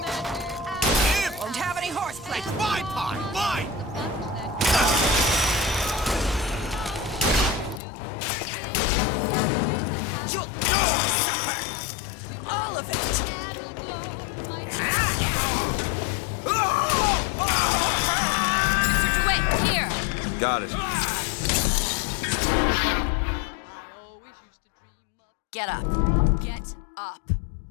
Won't have any horseplay. It's my pie! Mine! You'll all of it. Mr. DeWitt, here! Got it. Get up. Get up.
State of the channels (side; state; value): right; drops out; at 7.8 s